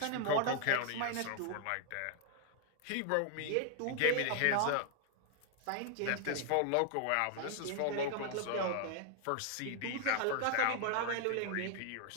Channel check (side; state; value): both; different; correlation 0.00